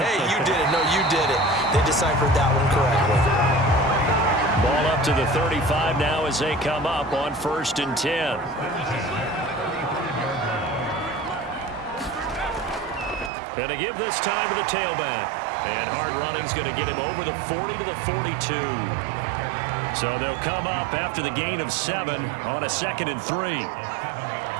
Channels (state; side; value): drops out; left; at 13.3 s